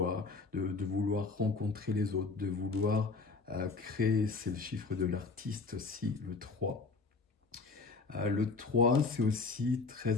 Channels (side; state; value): right; quieter; 4.1 dB